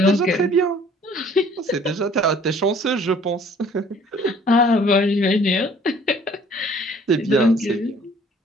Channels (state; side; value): normal; both; correlation 0.55